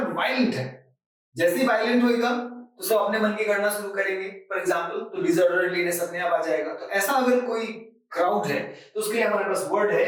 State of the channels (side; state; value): both; identical; correlation 1.00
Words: वायलेंट है। जैसे ही वायलेंट होएगा तो सब अपने मन की करना शुरू करेंगे, फॉर एग्जाम्पल, तो डिसऑर्डरलीनेस अपने आप आ जाएगा। तो ऐसा अगर कोई क्राउड है तो उसके लिए हमारे पास वर्ड है